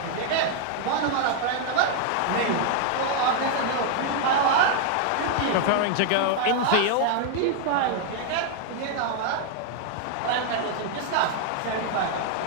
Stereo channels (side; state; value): both; different; correlation 0.00